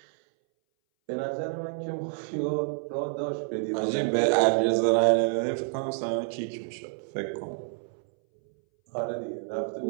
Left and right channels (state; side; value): silent; left; 59 dB below the other